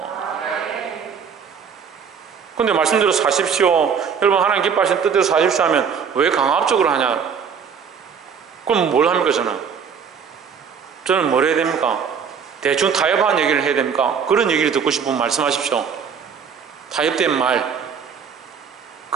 근데 말씀대로 사십시오, 여러분 하나님 기뻐하시는 뜻대로 사십시오 하면 왜 강압적으로 하냐? 그럼 뭘 합니까? 저는 뭘 해야 됩니까? 대충 타협한 얘기를 해야 됩니까? 그런 얘기를 듣고 싶으면 말씀하십시오. 타협된 말.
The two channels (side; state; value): left; quieter; 6.8 dB